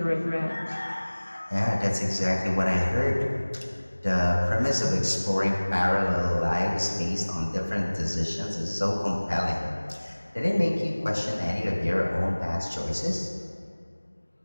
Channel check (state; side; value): inverted; both; correlation -1.00